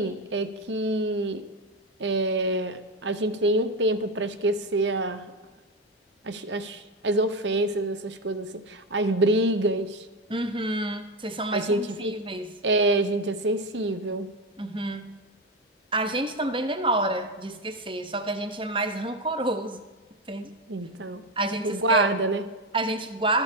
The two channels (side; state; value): both; normal; correlation 0.13